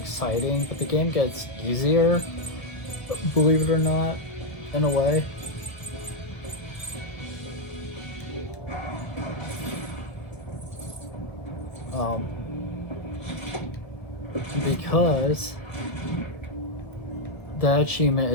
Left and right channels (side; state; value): right; late; 1.1 ms